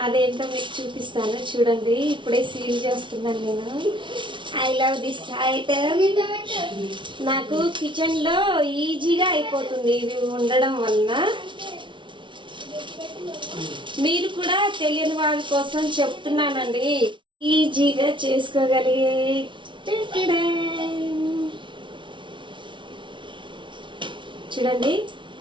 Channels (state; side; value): late; left; 0.24 ms